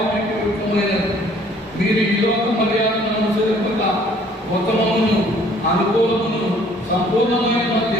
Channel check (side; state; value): both; normal; correlation 0.58